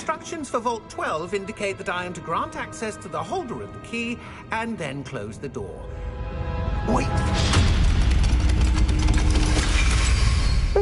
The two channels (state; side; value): identical; both; correlation 1.00